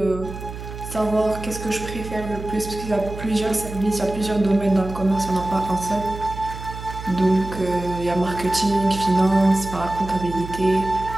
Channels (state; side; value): noise; right; hum, 10 dB below the sound